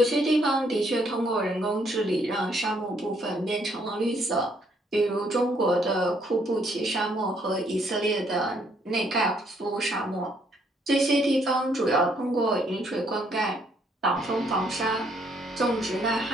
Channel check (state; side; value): normal; both; correlation 0.69